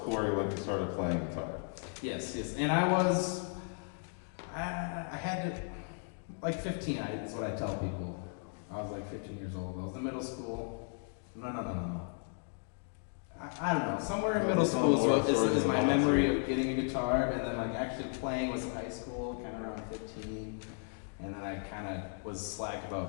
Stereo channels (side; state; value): right; silent; 54 dB below the other